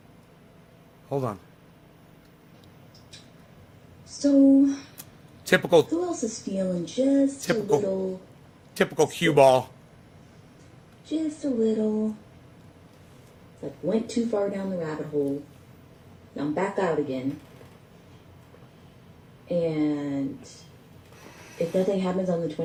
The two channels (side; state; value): both; identical; correlation 1.00